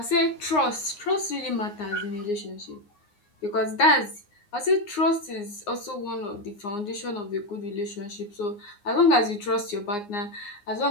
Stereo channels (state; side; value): late; right; 9.7 ms